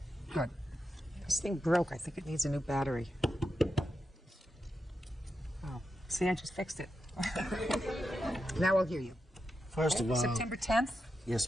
Good. This thing broke. I think it needs a new battery. Oh, see, I just fixed it. Now I'll hear you. First of all, September 10th?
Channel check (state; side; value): normal; both; correlation 0.88